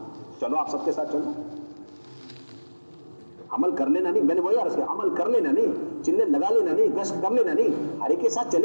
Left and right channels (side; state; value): both; inverted; correlation -1.00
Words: چلو آپ سب کے ساتھ چلو، عمل کر لینا نہیں، میں نے وہی عرض کیا، عمل کر لینا نہیں، چلے لگا لینا نہیں، گشت کر لینا نہیں، ہر ایک کے ساتھ